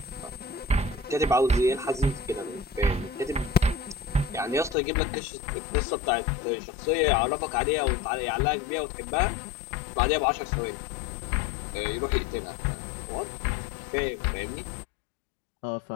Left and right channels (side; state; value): right; drops out; at 4.8 s